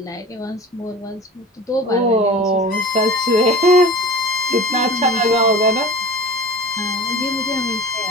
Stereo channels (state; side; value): normal; both; correlation 0.36